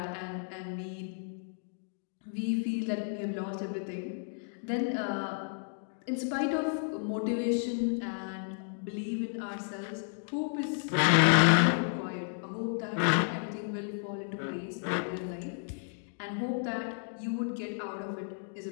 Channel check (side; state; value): right; silent; digital silence